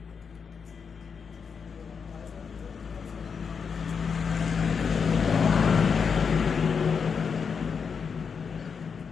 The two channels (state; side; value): quieter; right; 6.1 dB